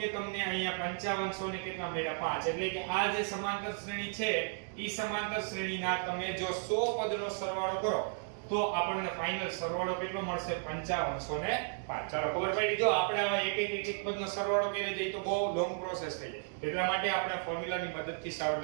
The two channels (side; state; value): left; silent; 55 dB below the other